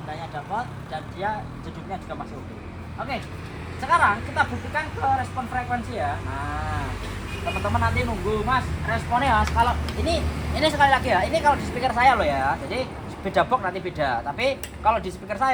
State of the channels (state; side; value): identical; both; correlation 1.00